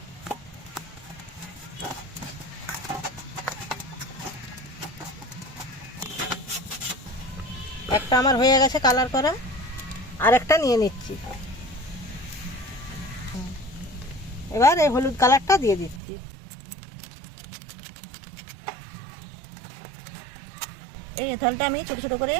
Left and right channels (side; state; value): left; drops out; at 16.0 s